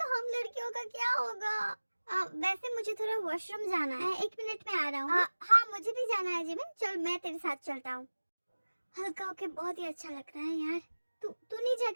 हम लड़कियों का क्या होगा? वैसे मुझे थोड़ा वॉशरूम जाना है, 1 मिनट में आ रहा हूँ। हाँ मुझे भी जाना है जिमिन, चल मैं तेरे साथ चलता हूँ। हल्का होके बहुत ही अच्छा लग रहा है यार। तू नहीं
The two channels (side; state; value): both; inverted; correlation -1.00